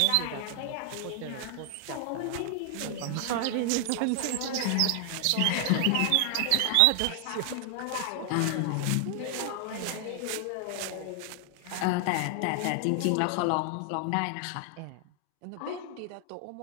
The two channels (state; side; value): different; both; correlation 0.00